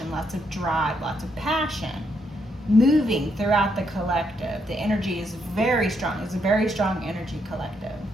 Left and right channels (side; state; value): both; normal; correlation 0.77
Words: lots of drive, lots of passion moving throughout the collective. The energy is very strong. It's a very strong energy collective.